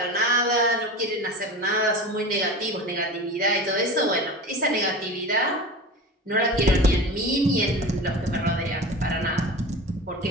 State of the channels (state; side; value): normal; both; correlation 0.32